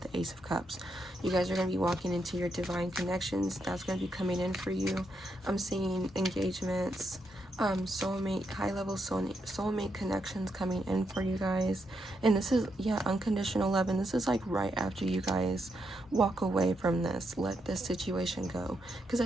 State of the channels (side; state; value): both; normal; correlation 0.81